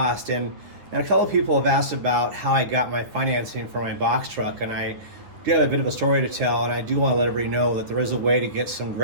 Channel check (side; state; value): left; late; 9.9 ms